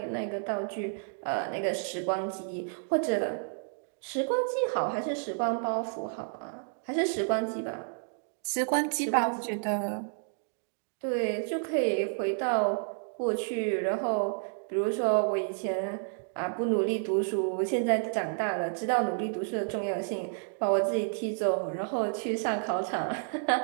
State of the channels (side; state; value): left; silent; digital silence